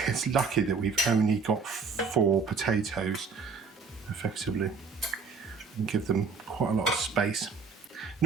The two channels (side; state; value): left; quieter; 4.9 dB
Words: It's lucky that we've only got 4 potatoes, effectively, and give them quite a lot of space.